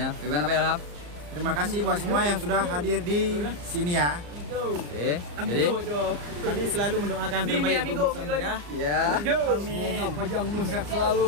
gimana Pak Ilham? Terima kasih buat semua yang sudah hadir di sini ya. Oke, jadi Kami selalu mendoakan terbaik untuk kami ya. ya. Amin. Panjang umur sehat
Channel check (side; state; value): left; late; 34 ms